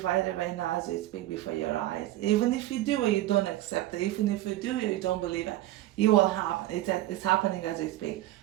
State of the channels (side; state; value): left; quieter; 15.3 dB